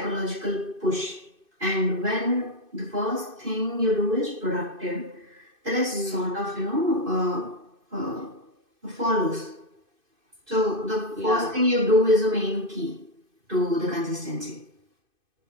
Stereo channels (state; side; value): late; left; 2.5 ms